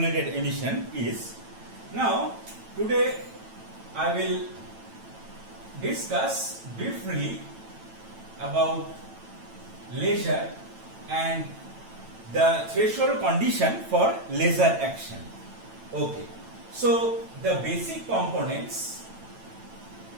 emission is. Now today I will discuss briefly about laser and the threshold condition for laser action. Okay, so the basic components,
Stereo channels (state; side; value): late; left; 9.0 ms